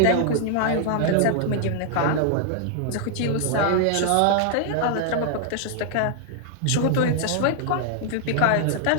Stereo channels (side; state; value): both; different; correlation 0.00